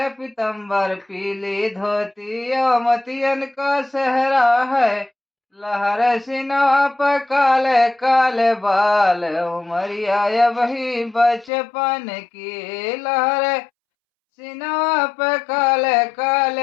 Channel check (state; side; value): drops out; right; at 11.5 s